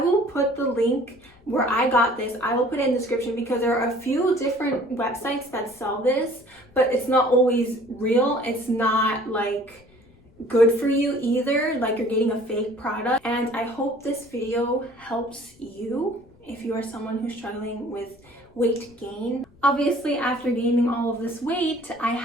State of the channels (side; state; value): left; noise; rumble, 29 dB below the sound